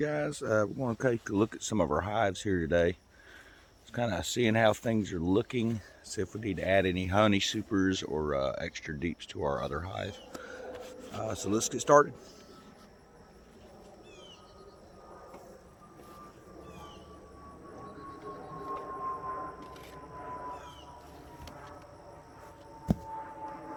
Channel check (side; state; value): both; identical; correlation 1.00